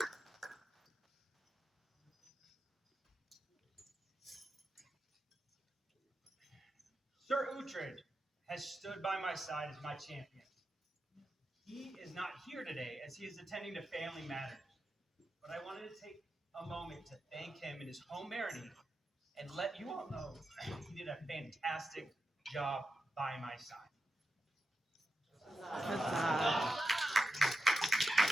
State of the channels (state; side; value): normal; both; correlation 0.89